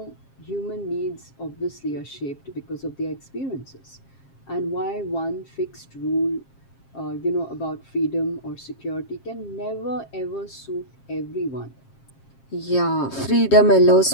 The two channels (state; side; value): late; right; 7.5 ms